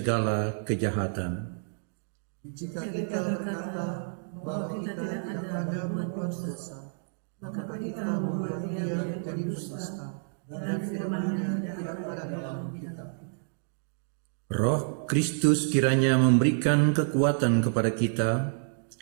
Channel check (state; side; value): silent; left; digital silence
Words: kejahatan. Jika kita berkata bahwa kita tidak ada berbuat dosa, maka kita membuat Dia menjadi dusta dan firman-Nya tidak ada dalam kita. Roh Kristus kiranya memberikan kekuatan kepada kita,